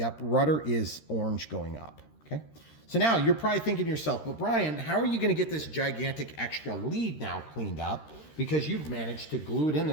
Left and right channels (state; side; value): late; right; 13 ms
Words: rudder is orange going up. Okay, so now you're probably thinking to yourself, but Brian, how are you going to get this gigantic extra lead now cleaned up? Because you've managed to glue it in